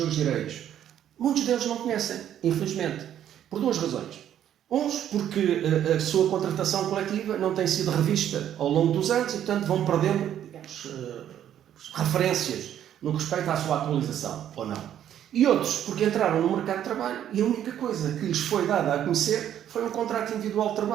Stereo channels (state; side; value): quieter; left; 10.5 dB